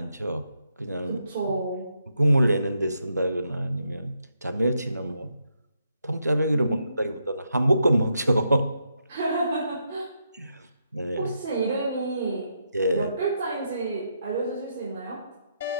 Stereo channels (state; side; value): inverted; both; correlation -0.80